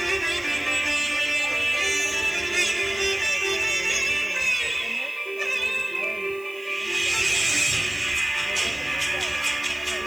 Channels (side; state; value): right; noise; hiss, 24 dB below the sound